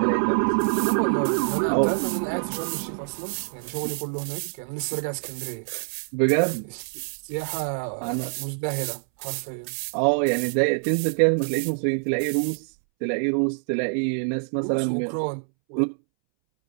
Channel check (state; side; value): silent; left; 61 dB below the other